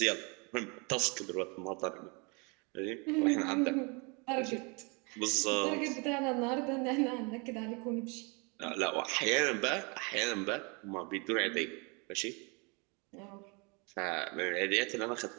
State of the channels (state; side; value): quieter; left; 31.2 dB